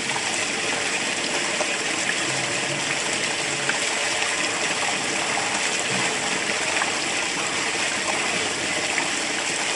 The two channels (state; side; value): identical; both; correlation 1.00